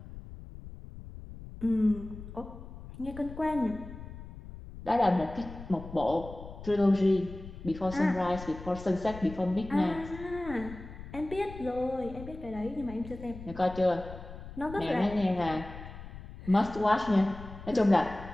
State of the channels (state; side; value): noise; left; rumble, 13 dB below the sound